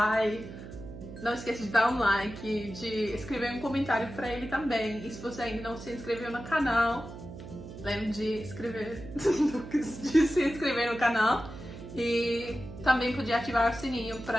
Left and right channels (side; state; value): right; noise; hum, 13 dB below the sound